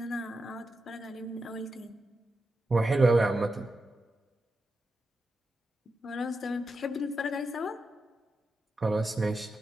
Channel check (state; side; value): normal; both; correlation 0.88